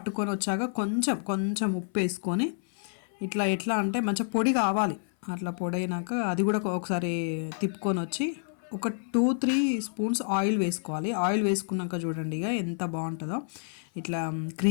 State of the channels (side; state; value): right; silent; 59 dB below the other